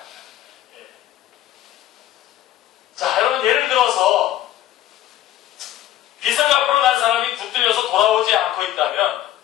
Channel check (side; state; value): right; quieter; 13.1 dB